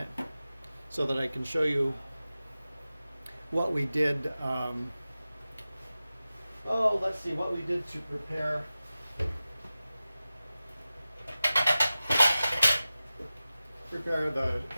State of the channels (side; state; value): both; inverted; correlation -0.96